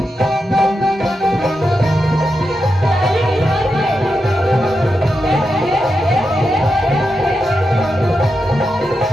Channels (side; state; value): both; normal; correlation 0.87